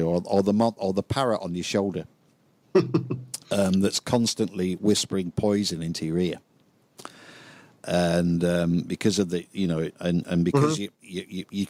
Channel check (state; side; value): identical; both; correlation 1.00